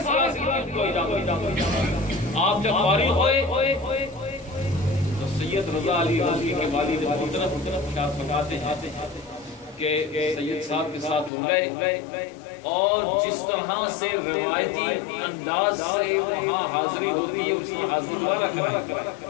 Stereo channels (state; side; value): drops out; right; at 11.3 s